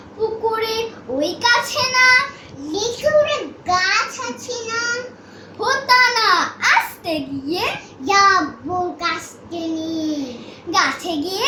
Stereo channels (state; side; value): identical; both; correlation 1.00